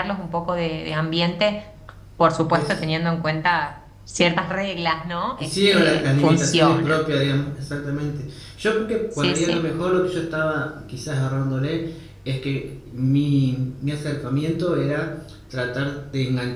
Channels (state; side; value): identical; both; correlation 1.00